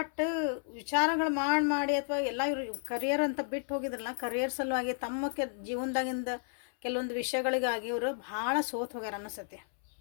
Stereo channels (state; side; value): silent; right; 56 dB below the other